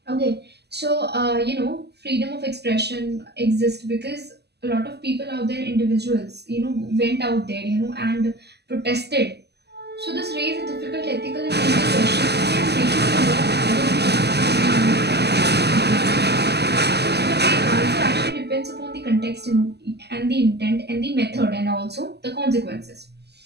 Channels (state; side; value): late; left; 0.49 ms